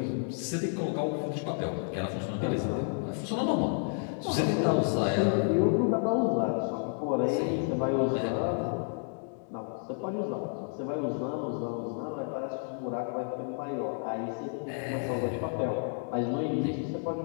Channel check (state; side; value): silent; right; 57 dB below the other